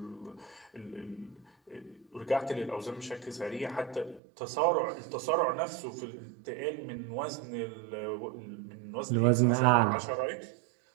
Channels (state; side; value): drops out; left; at 4.2 s